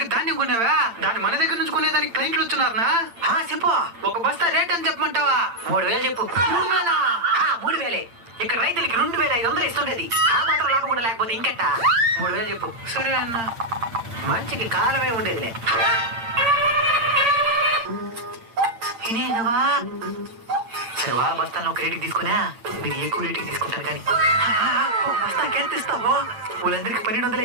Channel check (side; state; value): left; late; 8.8 ms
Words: ధాన్యం కొన్నావా? దాన్ని మన దగ్గర నుంచి కొనేదానికి క్లయింట్లు వచ్చున్నారనా? చెప్పు. ఒక బస్తా రేట్ అని చెప్పమంటావా? 3000 చెప్పు. 3000. ఇక్కడ రైతులకి 2500 ఇస్తుండేది. ఆ మాత్రం లాభం కూడా లేకపోతే ఇంకెట్ట? 3000 చెప్పు. సరే అన్న. మంచికి కాలమే ఉండేదిలే. ఇదేనవా? సరే వాళ్ళ బస్తాలను ఒక రేటుకి తీసుకున్నా, మీరు ఎక్కువ రేటుకి తీసుకుంటారు కానీ బస్తాకి ఎంత ఇస్తావో? వాళ్ళందరికీ 1200